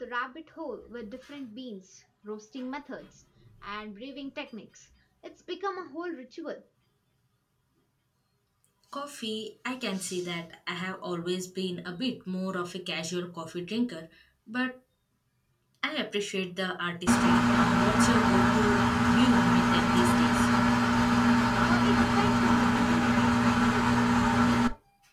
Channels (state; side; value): identical; both; correlation 1.00